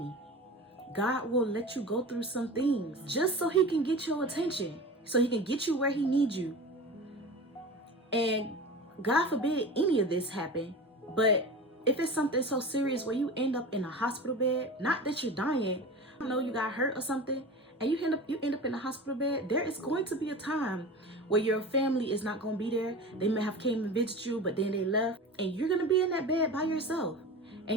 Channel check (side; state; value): both; normal; correlation 0.32